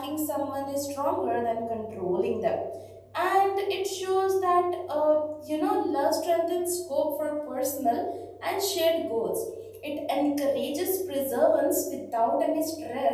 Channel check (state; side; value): identical; both; correlation 1.00